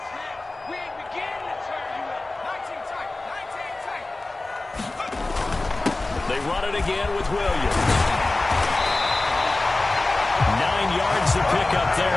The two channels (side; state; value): right; quieter; 3.0 dB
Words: They run it again with Williams. 9 yards to pick up